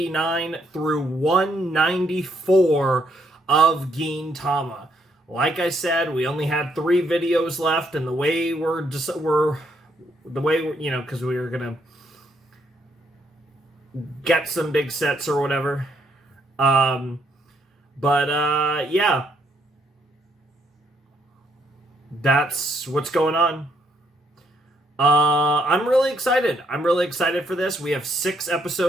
through 194 of Gintama. Like I said, we only had 3 videos left, and the way because we were going to get some big sets or whatever. Yeah. That's what's going on. I'm really excited. I'm really excited for this. We have 6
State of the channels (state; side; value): normal; both; correlation 0.73